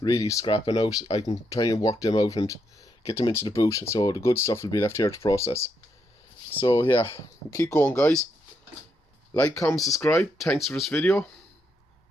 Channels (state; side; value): normal; both; correlation 0.79